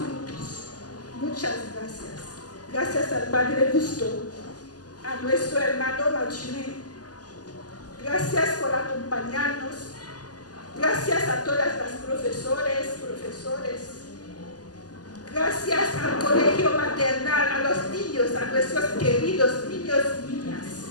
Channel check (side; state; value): right; late; 0.68 ms